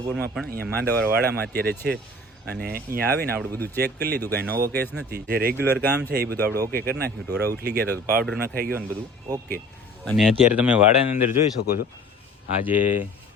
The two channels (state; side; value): normal; both; correlation 0.46